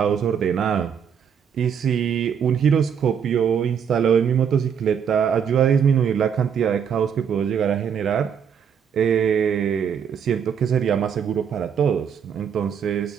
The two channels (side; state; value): left; quieter; 7.7 dB